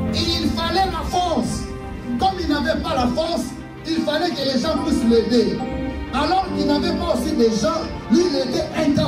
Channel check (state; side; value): identical; both; correlation 1.00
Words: il fallait la force. Comme il n'avait pas la force, il fallait que les gens puissent l'aider. Alors qu'il n'avait pas aussi des gens, lui il était